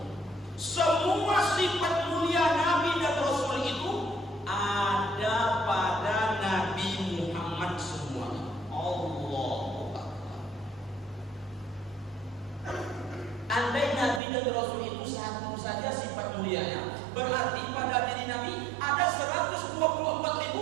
Semua sifat mulia Nabi dan Rasul itu ada pada Nabi Muhammad semuanya. Allah Andai Nabi dan Rasul itu satu saja sifat mulianya, berarti pada diri Nabi ada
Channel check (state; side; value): drops out; left; at 14.2 s